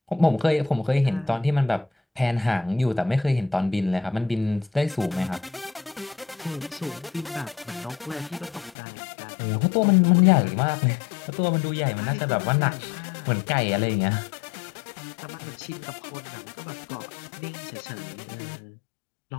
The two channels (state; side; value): drops out; right; at 8.8 s